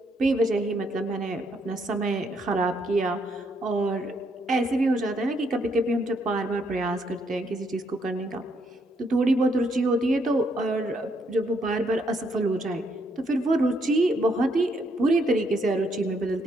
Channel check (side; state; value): both; normal; correlation 0.73